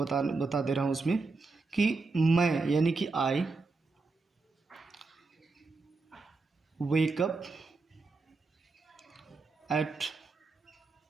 दे रहा हूँ उसमें कि मैं यानी कि I wake up at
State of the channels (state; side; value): quieter; left; 3.9 dB